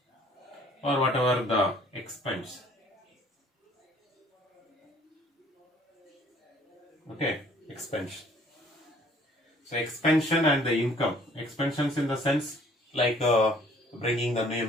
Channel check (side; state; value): both; normal; correlation 0.57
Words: or whatever the expense. Okay, expansion. So expansion and the income. Expansions in the sense like bringing the new